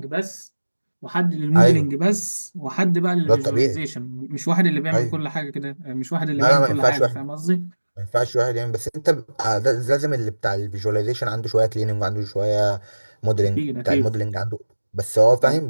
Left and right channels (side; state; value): both; inverted; correlation -1.00